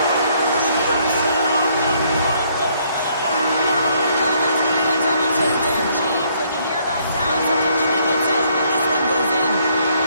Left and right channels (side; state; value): both; inverted; correlation -0.67